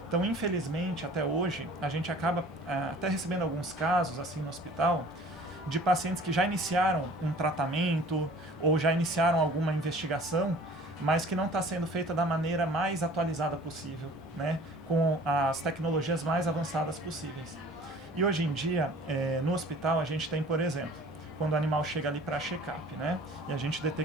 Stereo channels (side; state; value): both; normal; correlation 0.48